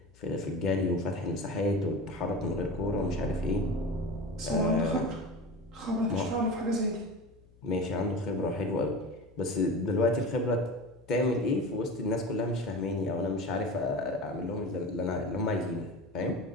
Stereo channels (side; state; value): left; noise; hum, 27 dB below the sound